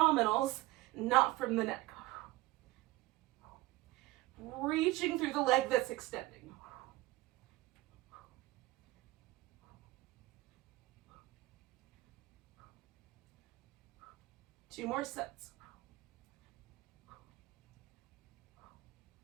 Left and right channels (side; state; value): left; quieter; 19.2 dB